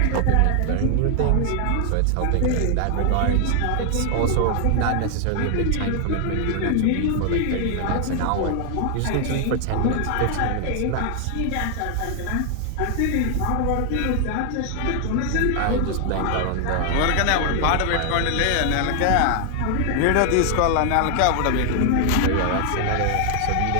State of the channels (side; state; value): both; different; correlation 0.00